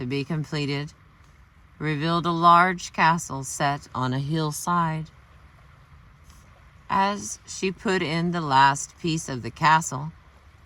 be completed, revealed a large castle set on a hillside. As she put in the last piece of the castle,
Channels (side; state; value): both; identical; correlation 1.00